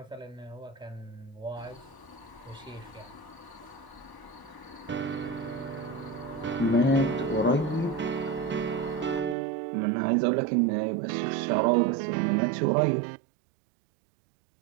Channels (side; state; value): left; drops out; at 9.3 s